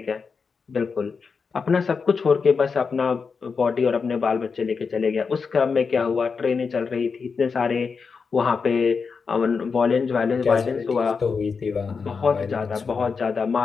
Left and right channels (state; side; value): quieter; right; 5.3 dB